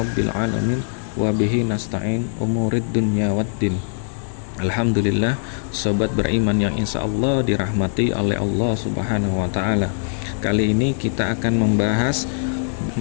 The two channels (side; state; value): right; silent; digital silence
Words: alamin. Wabihi nasta'in umurid dunya waddin. Alhamdulillah, sobat beriman yang insya Allah dirahmati oleh Allah subhanahu wa ta'ala. Kali ini kita akan membahas